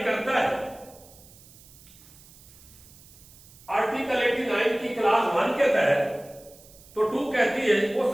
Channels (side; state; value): right; noise; hiss, 23 dB below the sound